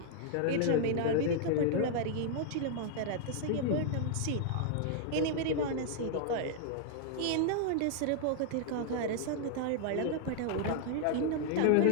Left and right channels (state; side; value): different; both; correlation 0.00